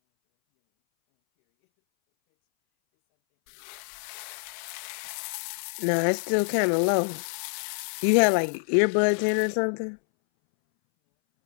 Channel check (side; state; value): right; silent; 61 dB below the other